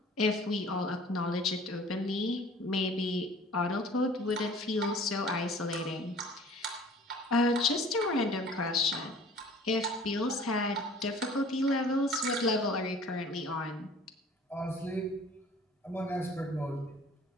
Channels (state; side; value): normal; both; correlation 0.48